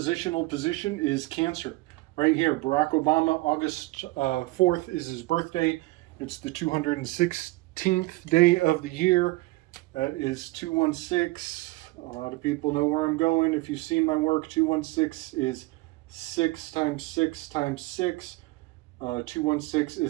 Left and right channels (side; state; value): left; quieter; 21.2 dB